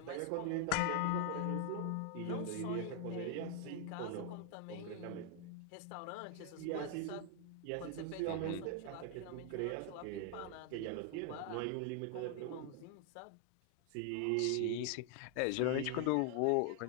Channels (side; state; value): both; different; correlation 0.00